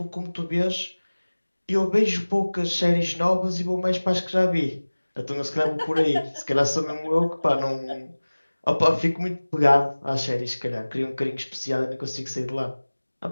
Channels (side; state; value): both; inverted; correlation -1.00